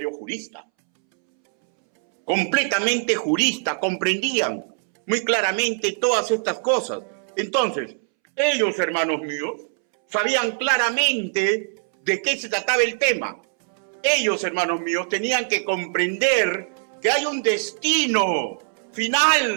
jurista. Completamente jurista, comprendían muy claramente todas estas cosas. Entonces, ellos, hermanos míos, sabían claramente de qué se trataba el tema. Ellos, hermanos míos, tenían que comprender que hay un destino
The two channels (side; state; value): left; silent; 64 dB below the other